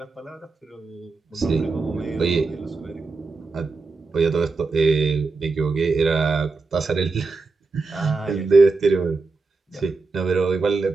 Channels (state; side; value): quieter; left; 4.0 dB